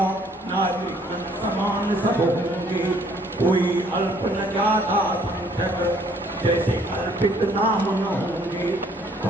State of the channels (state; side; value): normal; both; correlation 0.62